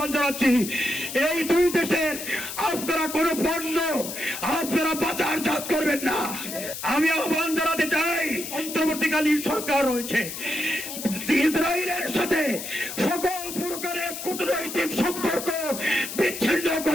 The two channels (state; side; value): noise; left; hiss, 8 dB below the sound